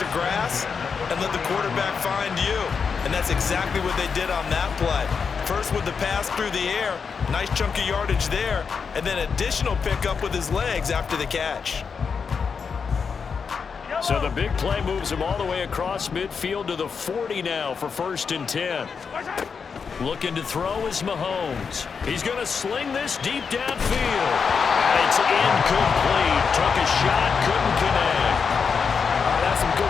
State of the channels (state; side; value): quieter; right; 5.8 dB